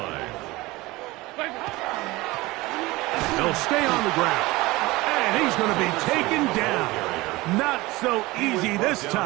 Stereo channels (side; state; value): left; quieter; 20.7 dB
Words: They'll stay on the ground. And he's going to be taken down. Not so easy this